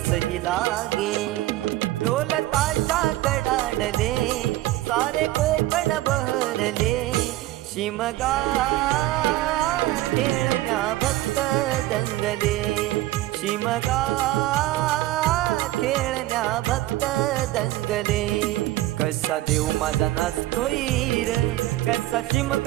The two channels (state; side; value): quieter; left; 16.4 dB